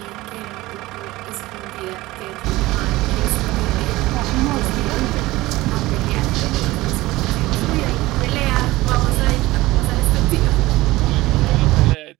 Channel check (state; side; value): quieter; left; 18.8 dB